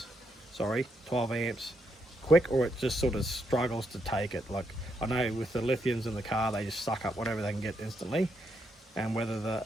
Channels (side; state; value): both; normal; correlation 0.79